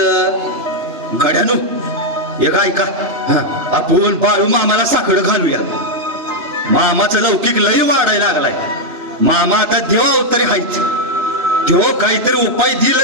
गड्यानो एक ऐका, आपण बाळू मामाला साखर घालूया. मामाचं लौकिक लई वाढायला लागलाय. मामा आता देवा अवतारी हायच. देव काहीतरी उपाय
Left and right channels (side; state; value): left; late; 2.9 ms